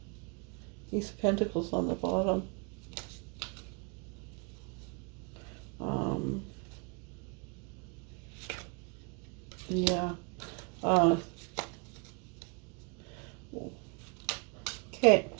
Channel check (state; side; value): quieter; left; 33.6 dB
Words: these pentacles on the bottom. Yeah. Okay.